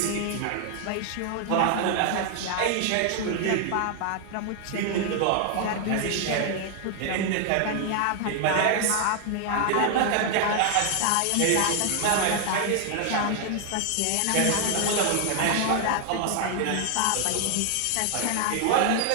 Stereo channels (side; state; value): both; different; correlation 0.00